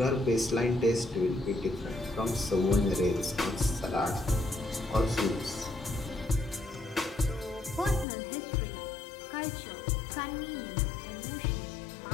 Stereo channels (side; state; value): right; drops out; at 8.1 s